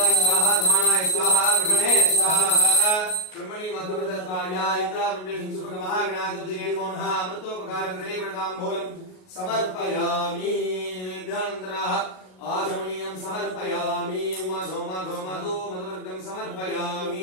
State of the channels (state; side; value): late; right; 38 ms